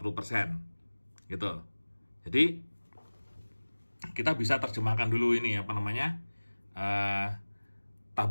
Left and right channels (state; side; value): inverted; both; correlation -1.00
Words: Gitu. Jadi kita bisa terjemahkan dulu ini apa namanya